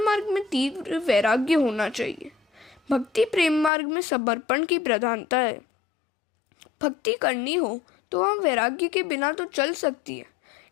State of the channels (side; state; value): right; drops out; at 3.7 s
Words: मार्ग में तीव्र वैराग्य होना चाहिए। भक्ति प्रेम मार्ग में समर्पण की प्रधानता है। भक्ति करनी हो तो वह वैराग्य के बिना तो चल सकती है,